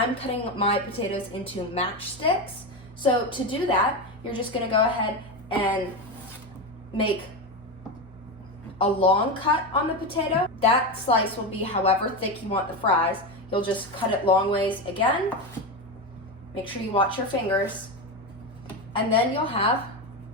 cutting my potatoes into matchsticks. So to do that, you're just gonna go ahead and make a long cut on the potato. That slice will be however thick you want the fries. You'll just cut it long ways again. Make sure you watch your fingers. And then you'll have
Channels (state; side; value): normal; both; correlation 0.16